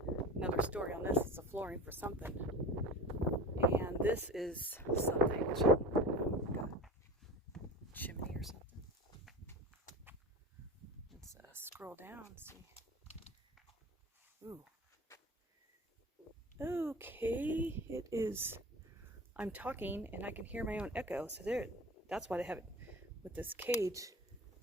another story on this. It's a flooring for something. And this is something. Which, like a chimney or something. Let's scroll down and see. Ooh. Okay, it is. I'm talking and I can hear my own echo. So there, that's why they have it with this cage.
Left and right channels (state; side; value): normal; both; correlation 0.34